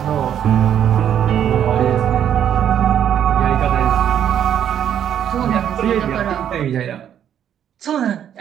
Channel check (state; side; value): quieter; left; 9.7 dB